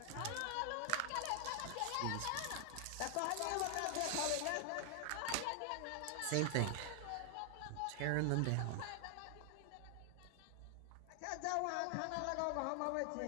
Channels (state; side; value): different; both; correlation 0.00